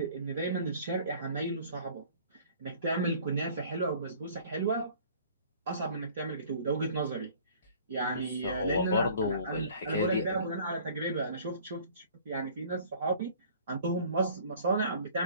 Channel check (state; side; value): inverted; both; correlation -0.51